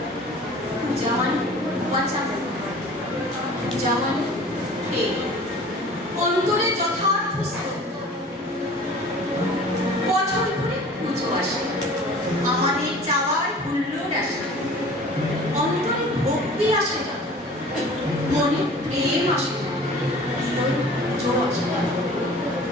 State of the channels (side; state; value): both; normal; correlation 0.44